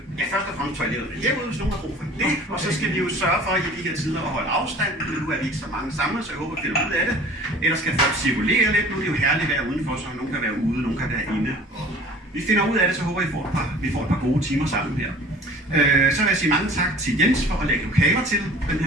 Først og fremmest toilettet herude, hvis nogen har brug for det, og så skal vi jo sørge for i de her tider at holde afstand. Nu er vi ikke så mange samlet, så jeg håber, at vi finder ud af det. Ellers skal folk cirkulere lidt. Nu er det jo herligt at være udenfor, så nogen kan være ude, nogen kan være inde. Vi finder ud af det, så håber vi får et par gode timer sammen her. Så vil jeg sige mange tak til Jens for at lægge lokaler til den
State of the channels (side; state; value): both; normal; correlation 0.46